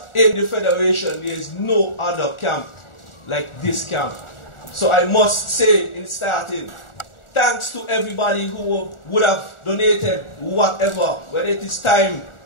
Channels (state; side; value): late; right; 1.4 ms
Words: in the Federation, there is no other camp like this camp. So I must say in starting, thanks to everybody who would have donated whatever, whether it is time,